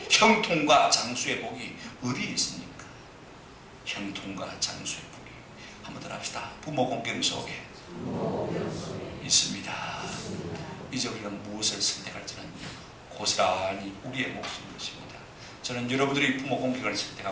형통과 장수의 복이 어디에 있습니까? 형통과 장수의 복이, 한번 더 합시다. 부모 공경 속에 있습니다. 이제 우리가 무엇을 선택할지는 고스란히 우리의 몫인 것입니다. 저는 여러분들이 부모 공경을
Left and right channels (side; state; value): both; identical; correlation 1.00